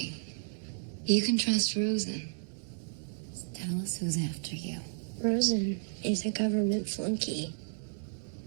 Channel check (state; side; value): silent; left; digital silence